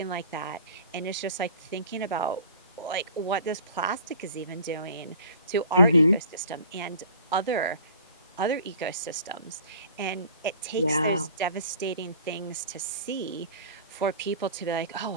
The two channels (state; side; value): inverted; both; correlation -0.46